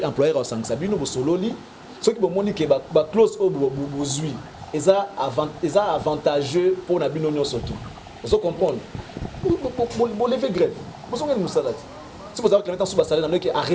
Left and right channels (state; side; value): identical; both; correlation 1.00